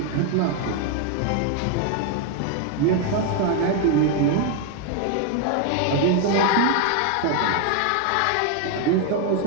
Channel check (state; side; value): different; both; correlation 0.01